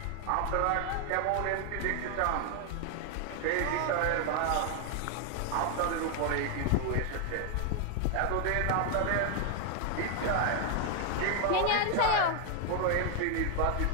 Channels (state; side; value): different; both; correlation 0.00